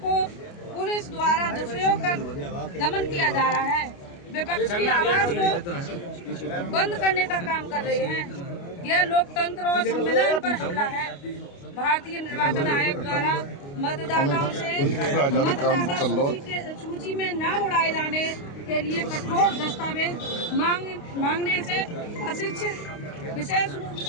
को पुलिस द्वारा दुरुपयोग कर दमन किया जा रहा है। विपक्ष की आवाज को बंद करने का काम कर रहे हैं। यह लोकतंत्र और संविधान पर हमला है। भारतीय निर्वाचन आयोग द्वारा मतदाताओं से मतदाता सूची में नाम उड़ाए जाने के लिए कठोर दस्तावेज मांगने से अशिक्षित, विशेष रूप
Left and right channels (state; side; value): late; right; 29 ms